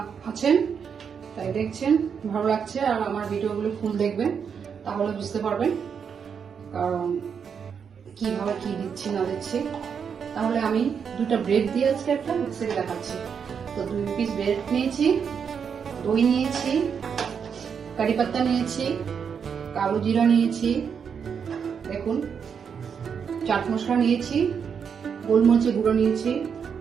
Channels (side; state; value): left; quieter; 6.9 dB